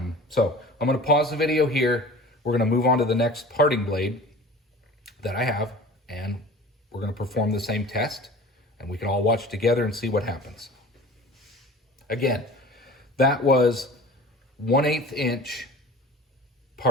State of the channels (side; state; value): both; normal; correlation 0.41